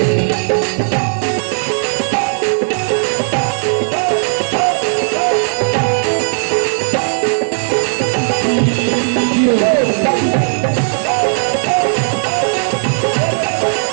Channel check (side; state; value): left; silent; digital silence